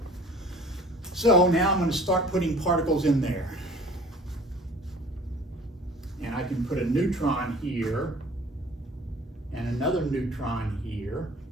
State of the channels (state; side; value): normal; both; correlation 0.48